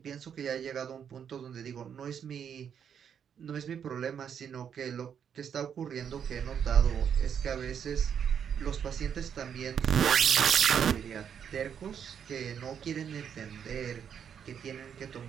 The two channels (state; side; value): quieter; left; 8.0 dB